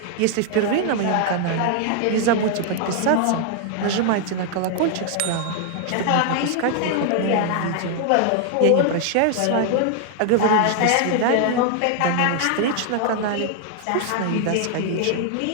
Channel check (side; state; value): both; different; correlation 0.00